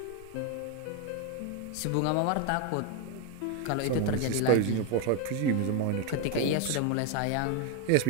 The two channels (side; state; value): both; different; correlation 0.01